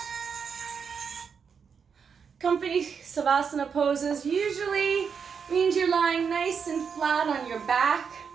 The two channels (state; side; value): quieter; left; 6.4 dB